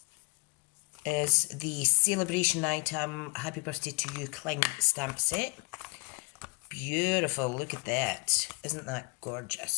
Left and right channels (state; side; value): quieter; right; 28.3 dB